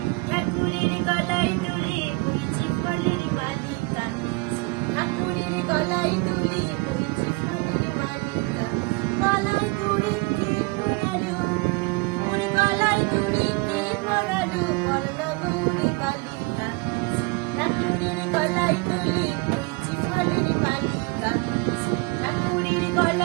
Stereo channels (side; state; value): left; quieter; 25.4 dB